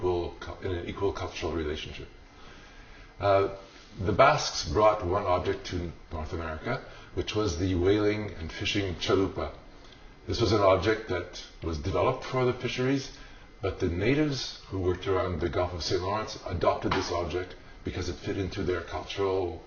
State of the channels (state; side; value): identical; both; correlation 1.00